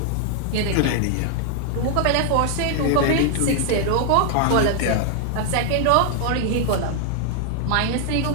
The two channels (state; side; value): different; both; correlation 0.00